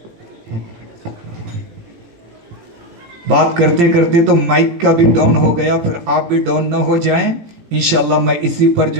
بات کرتے کرتے تو مائک کا بھی ڈاؤن ہو گیا، پھر آپ بھی ڈاؤن نہ ہو جائیں۔ انشاءاللہ میں اسی پر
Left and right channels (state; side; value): late; left; 17 ms